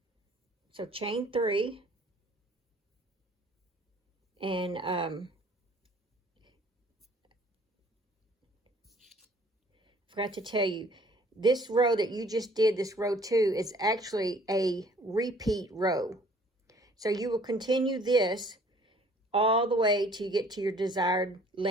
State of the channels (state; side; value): normal; both; correlation 0.56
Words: So chain 3. And forgot to tell you, this row that you just did, this row 2, is actually a repeat row. So you will continue this all the way till you get to your desired